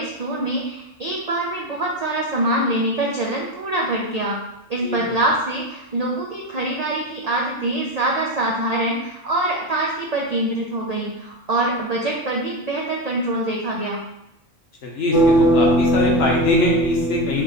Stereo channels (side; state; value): both; normal; correlation 0.18